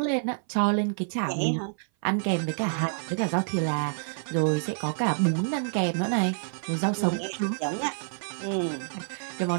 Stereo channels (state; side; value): silent; left; 57 dB below the other